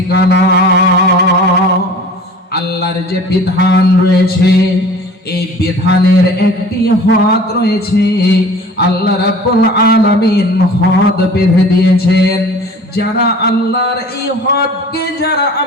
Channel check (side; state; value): both; normal; correlation 0.44